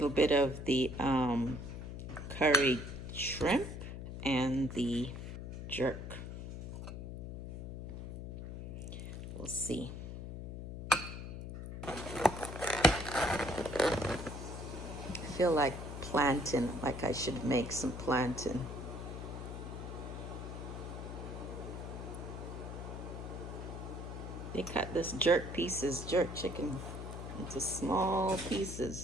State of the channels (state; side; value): noise; left; hum, 8 dB below the sound